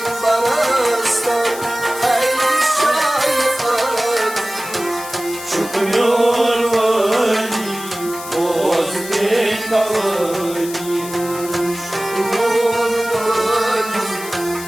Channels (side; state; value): left; noise; hiss, 12 dB below the sound